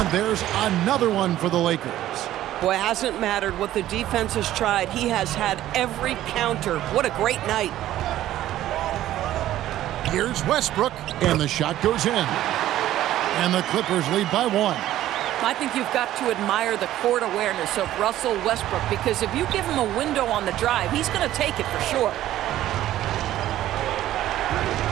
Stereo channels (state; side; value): quieter; left; 13.5 dB